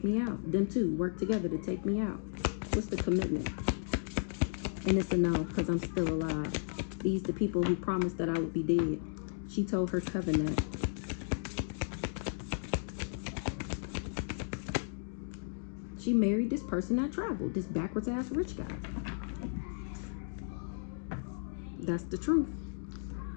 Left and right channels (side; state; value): right; silent; digital silence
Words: me out. Them two worked together to take me out. What's the commitment? And it's a no, because I'm still alive. These the people who promised that I would be dead. She told her coven that. She married this person that traveled, this backwards ass rich guy. That's the truth.